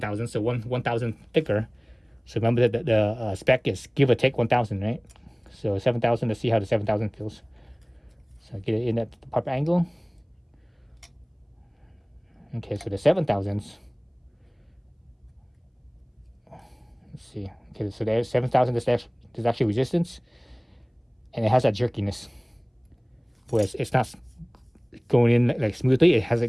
so 1,000 thicker. So remember that the spec is give or take 1,000, right? So 7,000. Let's see how the 7,000 feels. So I get it in at the proper angle. Okay, so the 7,000s. Let's see. Okay, so there's 7,000. There's actually resistance, and it has that jerkiness. Whereas it's not going in like smoothly.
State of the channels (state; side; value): identical; both; correlation 1.00